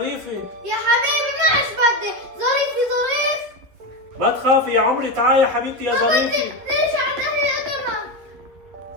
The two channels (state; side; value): late; left; 11 ms